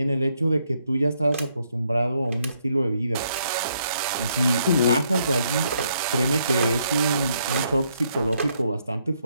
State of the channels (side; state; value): both; inverted; correlation -0.73